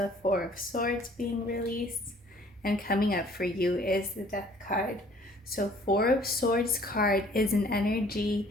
Four of Swords being released, and coming up for you is the Death card. So Four of Swords card is an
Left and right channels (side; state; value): both; normal; correlation 0.56